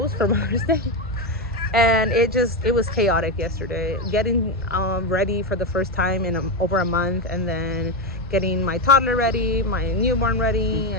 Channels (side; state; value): both; normal; correlation 0.11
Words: for Mother's Day. And it was chaotic yesterday. Getting ready for the first time in over a month, and then getting my toddler ready, my newborn ready,